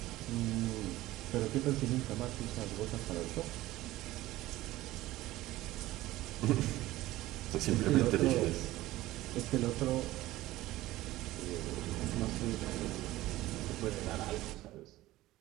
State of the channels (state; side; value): quieter; left; 16.7 dB